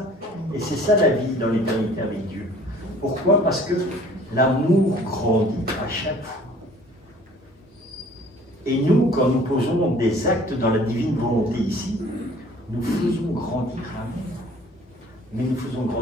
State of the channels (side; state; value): both; normal; correlation 0.52